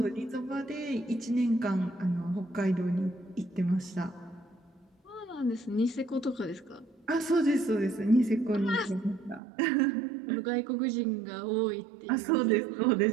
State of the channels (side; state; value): left; drops out; at 9.4 s